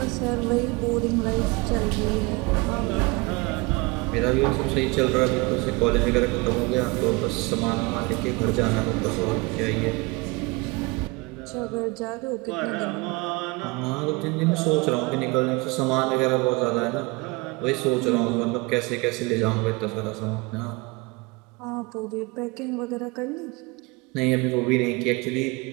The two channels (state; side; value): quieter; left; 25.8 dB